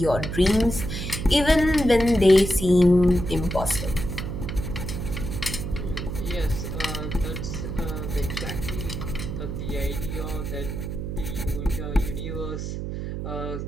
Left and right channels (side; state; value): right; noise; hum, 5 dB below the sound